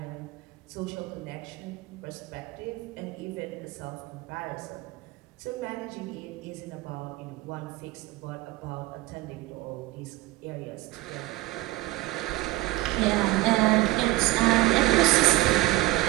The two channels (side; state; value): left; quieter; 18.9 dB